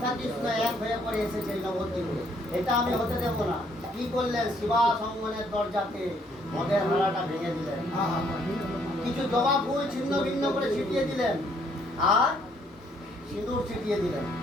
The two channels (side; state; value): both; normal; correlation 0.67